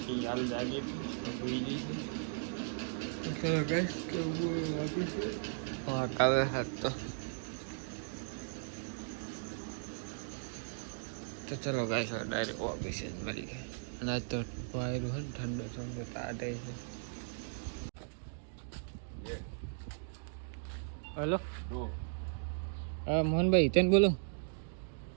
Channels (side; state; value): left; silent; digital silence